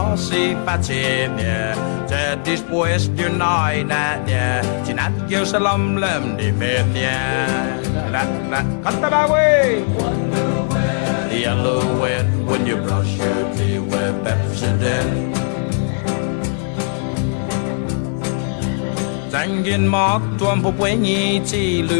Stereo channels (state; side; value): silent; right; 67 dB below the other